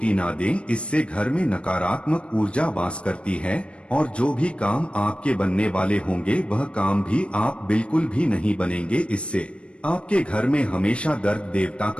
ना दें, इससे घर में नकारात्मक ऊर्जा वास करती है और जो भी काम आपके बनने वाले होंगे वह काम भी आप बिल्कुल भी नहीं बनेंगे। इससे आपके घर में हमेशा दर्द देवता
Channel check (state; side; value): late; right; 0.059 ms